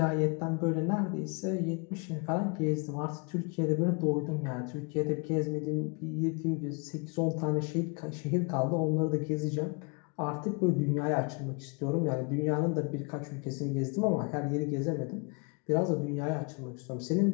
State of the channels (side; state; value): right; quieter; 33.5 dB